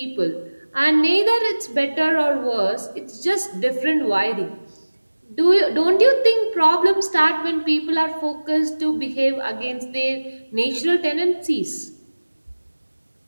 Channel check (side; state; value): both; inverted; correlation -1.00